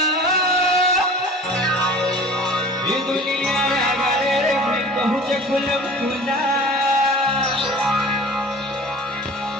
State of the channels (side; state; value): both; normal; correlation 0.42